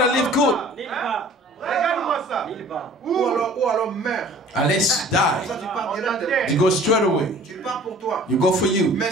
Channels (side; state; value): both; normal; correlation 0.49